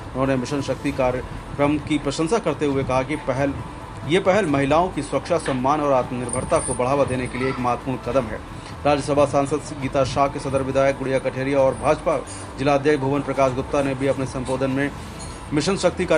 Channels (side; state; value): both; identical; correlation 1.00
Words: उन्होंने मिशन शक्ति कार्यक्रम की प्रशंसा करते हुए कहा कि ये पहल महिलाओं की सुरक्षा, सम्मान और आत्मनिर्भरता को बढ़ावा देने के लिए एक महत्वपूर्ण कदम है। राज्यसभा सांसद गीता शाह के सदर विधायक गुड़िया कठेरिया और भाजपा जिला अध्यक्ष भुवन प्रकाश गुप्ता ने भी अपने संबोधन में मिशन शक्ति